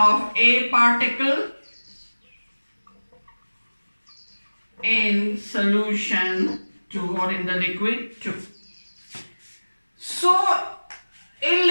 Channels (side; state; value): both; inverted; correlation -1.00